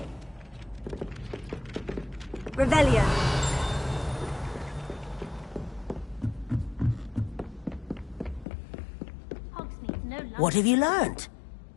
Revelio. What have you learned?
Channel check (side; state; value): right; drops out; at 8.5 s